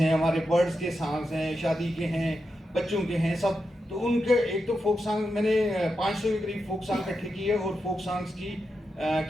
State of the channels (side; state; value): both; normal; correlation 0.87